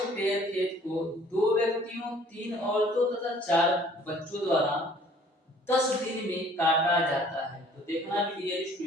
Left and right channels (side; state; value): both; normal; correlation 0.55